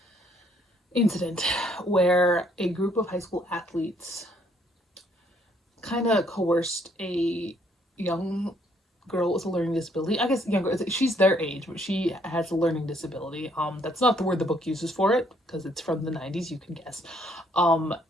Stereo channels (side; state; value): both; normal; correlation 0.67